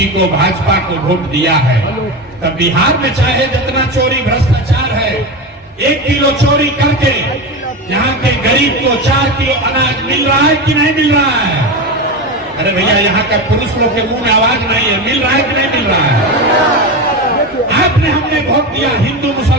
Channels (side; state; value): both; normal; correlation 0.20